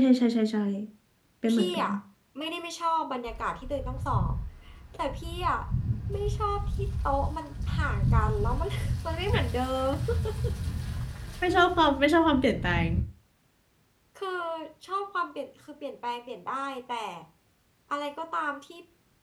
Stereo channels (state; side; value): identical; both; correlation 1.00